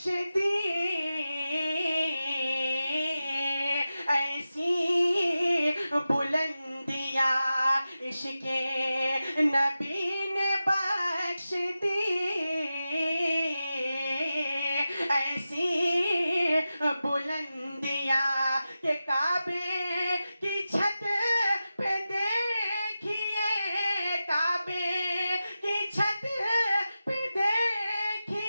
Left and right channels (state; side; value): inverted; both; correlation -0.93